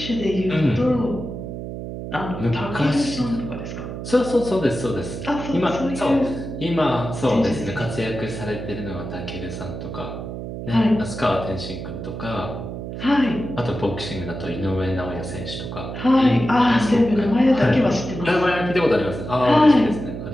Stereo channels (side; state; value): right; noise; hum, 8 dB below the sound